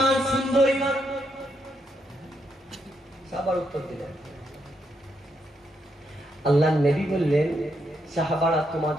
সুন্দর ঈমান। সাহাবার উত্তর দিলেন, আল্লাহর নবী বললেন, সাহাবারা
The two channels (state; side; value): normal; both; correlation 0.79